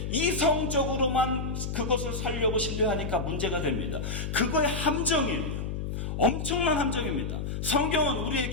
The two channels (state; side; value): noise; left; hum, 4 dB below the sound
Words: 이성적으로만 그것을 살려고 신뢰하니까 문제가 됩니다. 그거의 함정이에요. 엄청난 함정입니다. 성경은